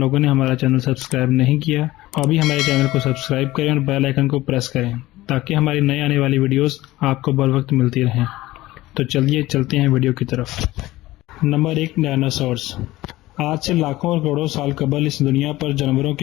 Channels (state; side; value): quieter; right; 17.6 dB